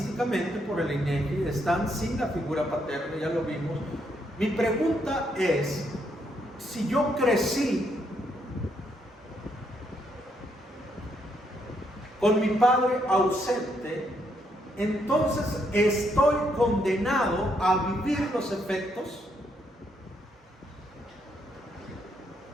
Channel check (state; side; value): normal; both; correlation 0.75